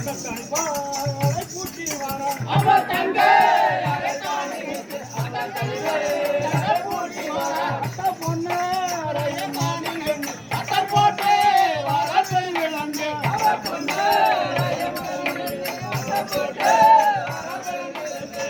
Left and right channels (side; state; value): both; identical; correlation 1.00